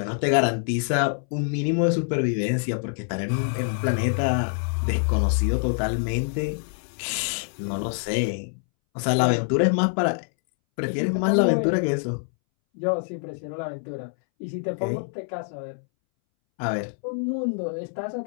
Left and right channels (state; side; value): silent; right; 61 dB below the other